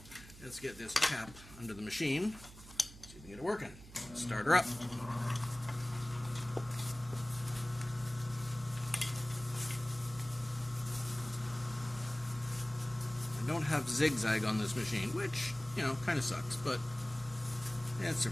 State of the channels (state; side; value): noise; right; hum, 17 dB below the sound